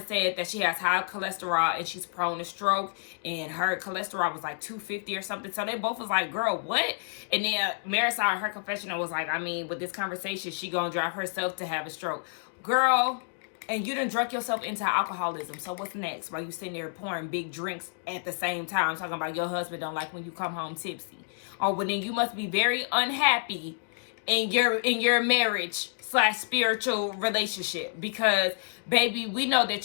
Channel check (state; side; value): silent; right; digital silence